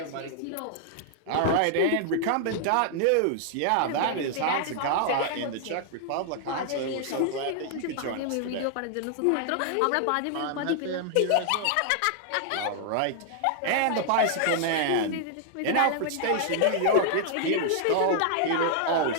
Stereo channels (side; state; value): both; different; correlation 0.00